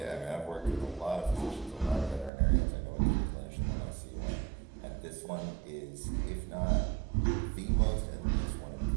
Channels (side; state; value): left; drops out; at 2.3 s